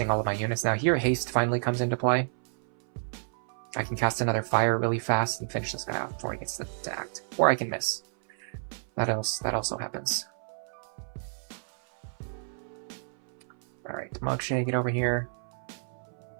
all of my units. Now here, haste finally comes into play. I can cast another fire really fast and finish this guy off before he gets to act. Or I can miss. That also happens. Alright, Marche, get over here.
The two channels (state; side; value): silent; left; 58 dB below the other